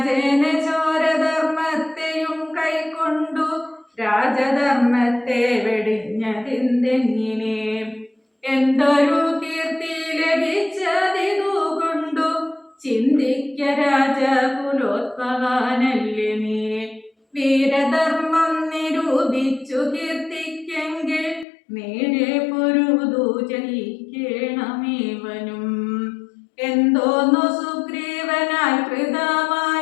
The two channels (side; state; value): right; drops out; at 21.5 s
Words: ചോരധർമ്മത്തെയും കൈക്കൊണ്ടു രാജധർമ്മത്തെ വെടിഞ്ഞതിന്തെങ്ങിനെ എന്തൊരു കീർത്തി ലഭിച്ചതിതു കൊണ്ടു ചിന്തിക്ക രാജകുലോത്ഭവാനല്ലേ നീ വീരധർമ്മം നിരൂപിച്ചു കീർത്തിക്കെങ്കിൽ നേരെ പൊരു അരുതു ജയിക്കണമേവനും. എന്തോന്നു സുഗ്രീവനാൽ